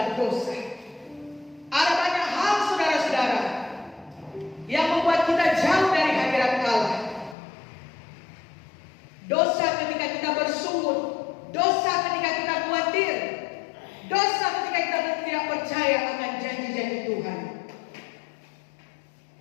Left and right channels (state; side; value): drops out; right; at 7.4 s